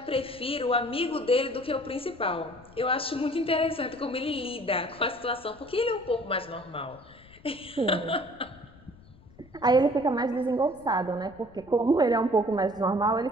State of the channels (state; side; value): noise; left; rumble, 24 dB below the sound